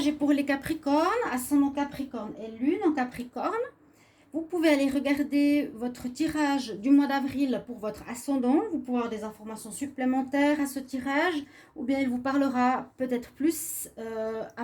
est pour les Capricornes, ascendant Capricorne et lune en Capricorne. Vous pouvez aller regarder votre tirage du mois d'avril pour votre ascendant, vous pouvez avoir des informations supplémentaires à ce tirage, ou bien il vous parlera peut-être plus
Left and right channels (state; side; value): identical; both; correlation 1.00